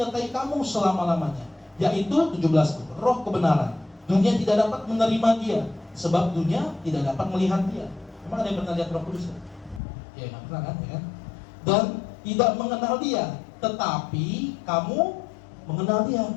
kamu selama-lamanya. Yaitu 17, Roh kebenaran. Dunia tidak dapat menerima Dia, sebab dunia tidak dapat melihat Dia. Memang ada yang pernah lihat Roh Kudus? Ya, nggak pernah kan? Ya? Dan tidak mengenal Dia, tetapi kamu mengenal Dia.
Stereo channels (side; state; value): right; drops out; at 9.8 s